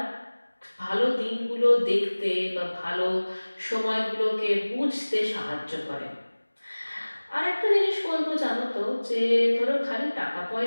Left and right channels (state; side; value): inverted; both; correlation -1.00